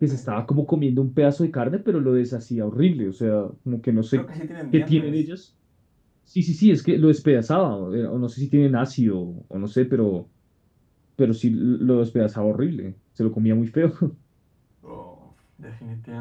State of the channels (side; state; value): both; identical; correlation 1.00